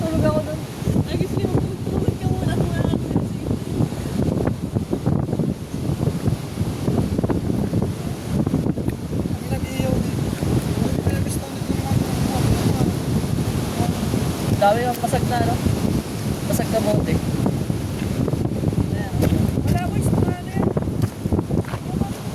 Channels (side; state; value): both; identical; correlation 1.00